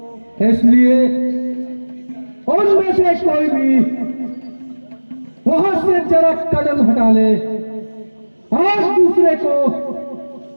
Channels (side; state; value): both; inverted; correlation -1.00